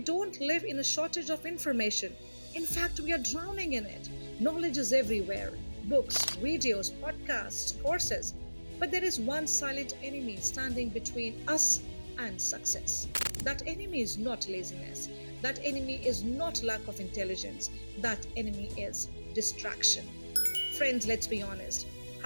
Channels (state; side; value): inverted; both; correlation -1.00